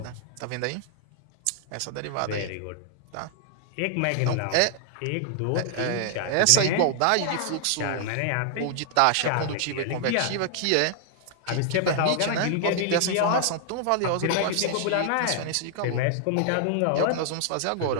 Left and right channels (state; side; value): different; both; correlation -0.01